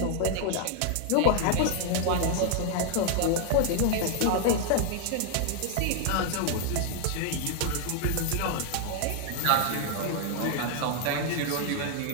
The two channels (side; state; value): both; different; correlation 0.00